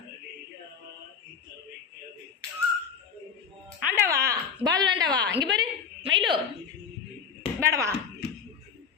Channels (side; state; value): right; quieter; 6.6 dB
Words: ஆண்டாவா பால் வேண்டாவா இங்கே பாரு மயிலு வேடவா